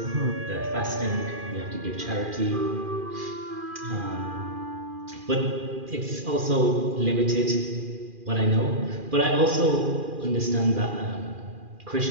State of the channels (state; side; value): late; left; 2.4 ms